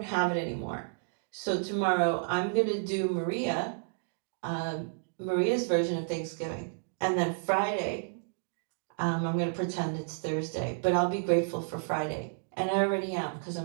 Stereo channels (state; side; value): silent; left; digital silence